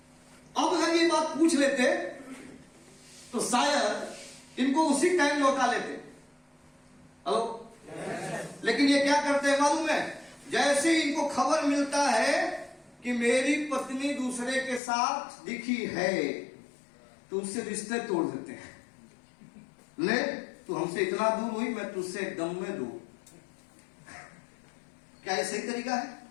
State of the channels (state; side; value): drops out; right; at 14.8 s